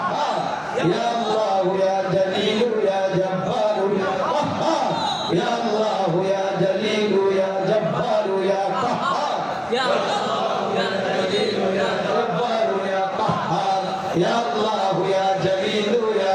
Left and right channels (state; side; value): identical; both; correlation 1.00